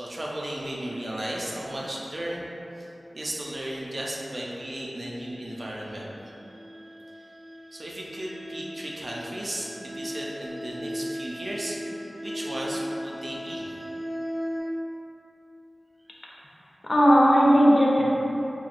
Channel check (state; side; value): normal; both; correlation 0.97